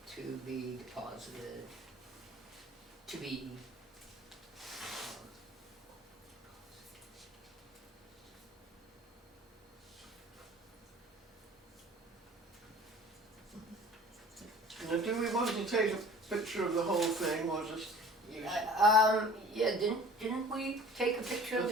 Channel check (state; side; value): normal; both; correlation 0.46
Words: to be deposited, to be, Now, do we want to take a picture of the whole thing, or just use? yeah, didn't we take a picture of We'll